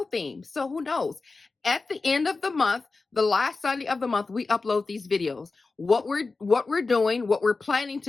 theme. So who knows? At the end of the month, the last Sunday of the month, we upload these videos. What we're doing, what we're planning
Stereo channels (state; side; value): quieter; right; 3.9 dB